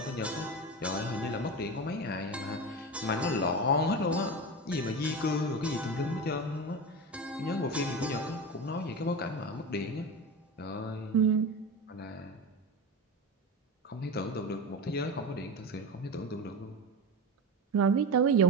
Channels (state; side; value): normal; both; correlation 0.24